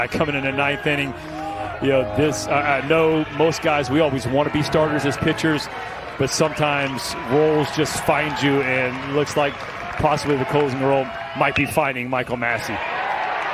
coming in the 9th inning, you know, this, I know most guys, we always want to be starters as pitchers, but sometimes roles just find you, and it looks like possibly the closing role might be finding Michael Massey.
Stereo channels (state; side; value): identical; both; correlation 1.00